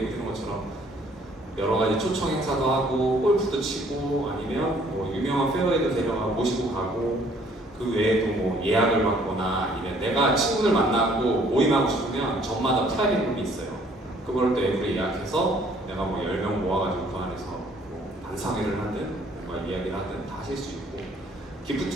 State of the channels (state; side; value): normal; both; correlation 0.60